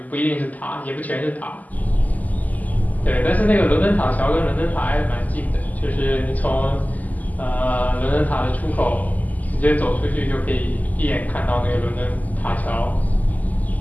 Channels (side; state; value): right; late; 0.079 ms